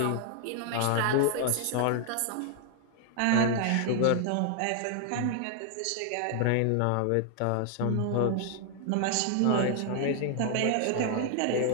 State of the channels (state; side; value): different; both; correlation 0.00